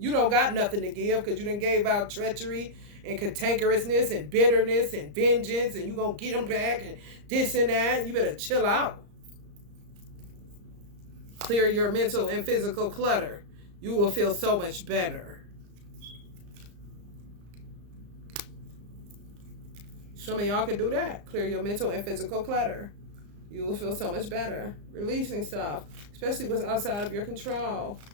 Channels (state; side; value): late; left; 34 ms